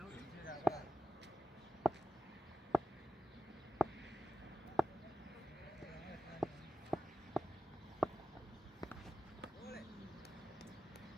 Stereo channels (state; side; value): normal; both; correlation 0.93